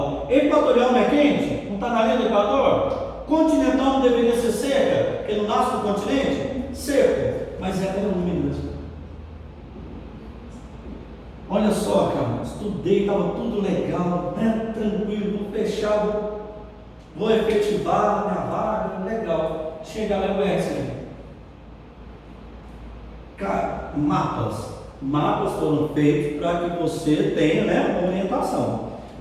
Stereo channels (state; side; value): identical; both; correlation 1.00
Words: Equatorial não é quente? Não está na linha do Equador? Continental não deveria ser seca, porque não nasce no continente? Seco, mas é úmido. Olha só, cara, estudei, estava tudo legal, né? Tranquilo, fechado, vou efetivar minha vaga, legal. Chega lá e conhece. Cara, mapas foram feitos para que você tenha, né, uma orientação,